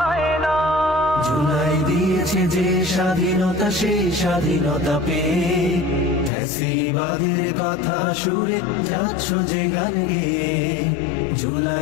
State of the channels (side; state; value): right; drops out; at 6.3 s